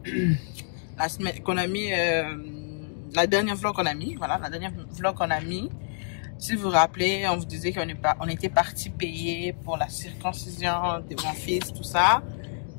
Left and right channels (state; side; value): silent; right; digital silence